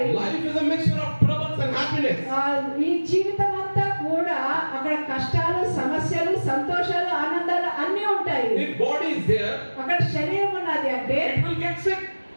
Life is a mixture of troubles and happiness. ఈ జీవితం అంతా కూడా అక్కడ కష్టాలు, సమస్యలు, సంతోషాలు, ఆనందాలు అన్నీ ఉంటాయి. If body is there, అక్కడ శరీరం ఉన్నది అంటే it will get sick,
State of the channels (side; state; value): both; inverted; correlation -1.00